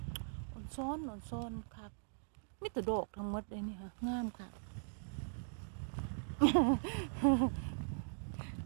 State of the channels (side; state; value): left; silent; digital silence